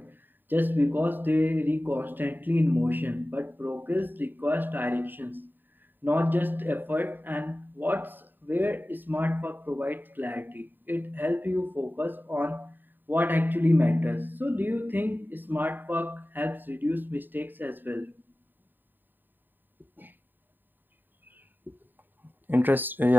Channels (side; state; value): left; late; 0.092 ms